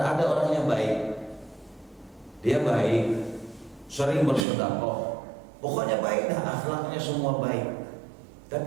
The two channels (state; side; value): drops out; left; at 4.5 s